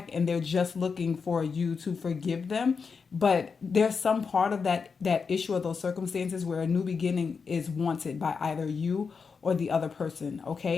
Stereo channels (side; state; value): right; quieter; 5.4 dB